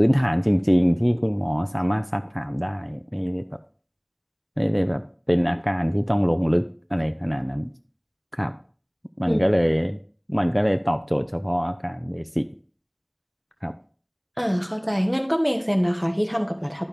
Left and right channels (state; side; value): identical; both; correlation 1.00